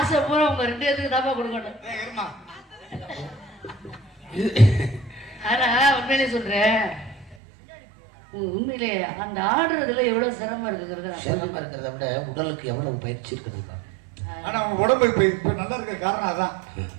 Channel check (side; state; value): left; drops out; at 7.4 s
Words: பூரா உங்க 2 பேருக்கு தாப்பா கொடுக்கணும். ஆனா உண்மையிலே சொல்றேன், உண்மையிலே அந்த ஆடுறதுல எவ்வளவு சிரமம் இருக்குங்கிறத சிரமம் இருக்கிறத விட உடலுக்கு எவ்வளவு பயிற்சி இருக்குது. ஆனா உங்க உடம்பு இப்ப நல்லா இருக்க காரணம் அதான்.